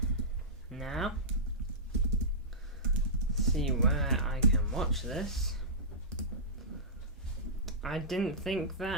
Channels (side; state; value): both; normal; correlation -0.16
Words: now. See where I can watch this. I didn't think